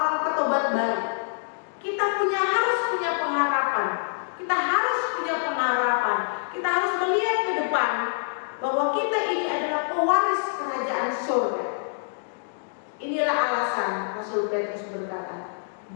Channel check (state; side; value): silent; right; digital silence